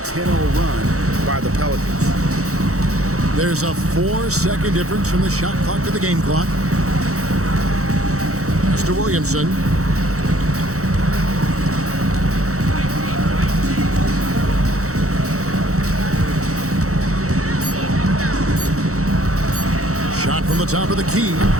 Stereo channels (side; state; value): left; late; 0.65 ms